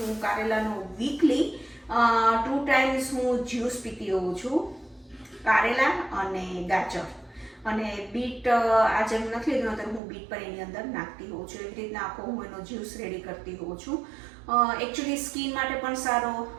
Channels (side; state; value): left; drops out; at 10.0 s